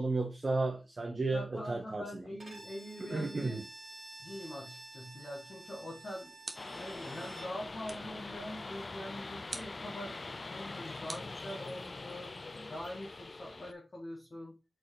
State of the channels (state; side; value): normal; both; correlation 0.92